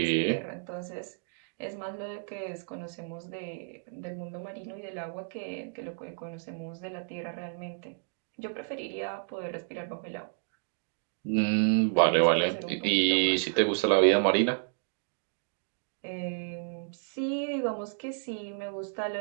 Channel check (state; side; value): silent; left; digital silence